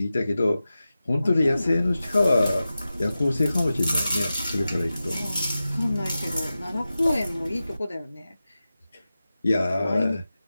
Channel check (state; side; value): inverted; both; correlation -0.94